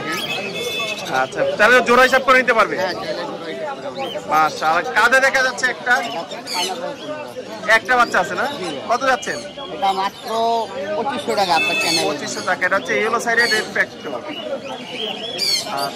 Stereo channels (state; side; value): identical; both; correlation 1.00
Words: আচ্ছা, তাহলে জোড়া হিসাব করে নিতে পারবে? হ্যাঁ, চ্যানেল মাশাআল্লাহ। কাঁধে দেখা যাচ্ছে একটা বাচ্চা আছে না? কত যাচ্ছেন? এটা মাত্র 2500 টাকা আপনার চ্যানেল। 2500 টাকা। এটা হচ্ছে ইয়েলো সাইডের রেড ফ্যাক্টর।